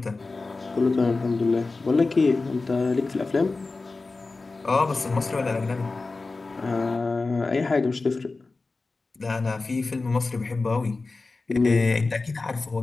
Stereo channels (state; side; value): quieter; right; 3.7 dB